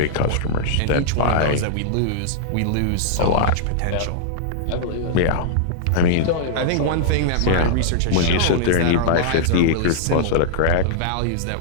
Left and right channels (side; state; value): both; different; correlation -0.01